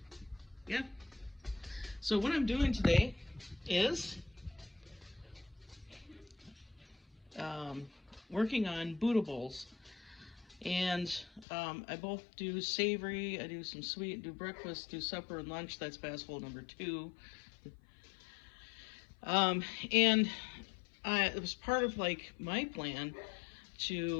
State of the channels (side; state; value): right; drops out; at 11.5 s